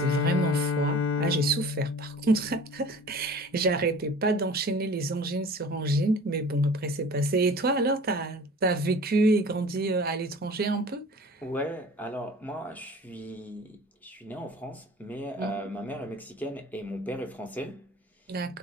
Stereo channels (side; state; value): both; normal; correlation 0.43